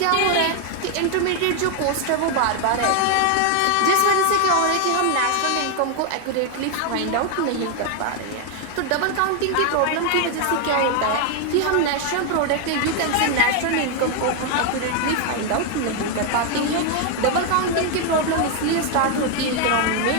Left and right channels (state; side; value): different; both; correlation 0.01